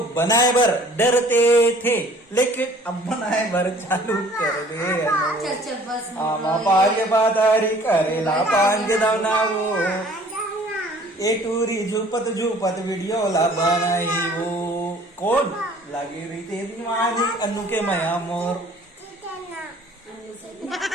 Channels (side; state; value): both; normal; correlation 0.53